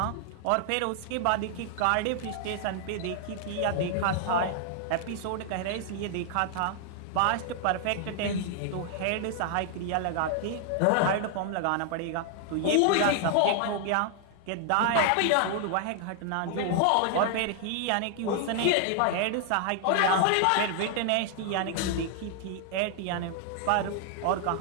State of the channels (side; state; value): both; different; correlation 0.00